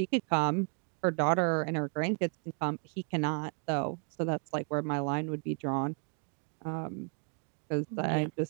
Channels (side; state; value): left; quieter; 39.5 dB